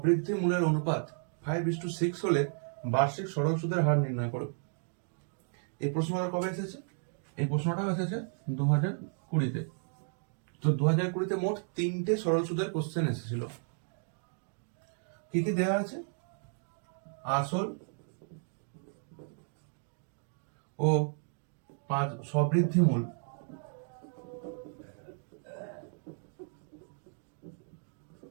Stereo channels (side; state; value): left; silent; 55 dB below the other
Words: মূলের অনুপাত 5:6 হলে বার্ষিক সরল সুদের হার নির্ণয় করো। এই প্রশ্নটা কবে এসেছে? এই প্রশ্নটাও এসেছে 2020-তে। তো 2020-তে মোট 3টে সরল সুদের কোশ্চেন এসেছিল। কি কি দেওয়া আছে? আসল ও সবৃদ্ধি মূল,